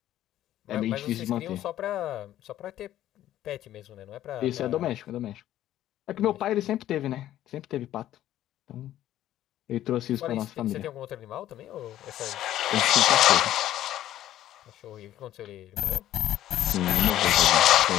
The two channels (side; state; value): right; quieter; 12.9 dB